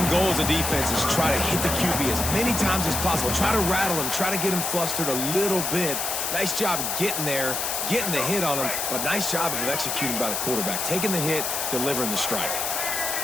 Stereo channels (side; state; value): left; noise; hiss, 1 dB below the sound